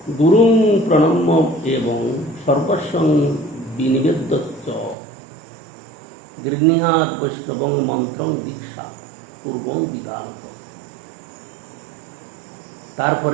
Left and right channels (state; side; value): drops out; left; at 5.0 s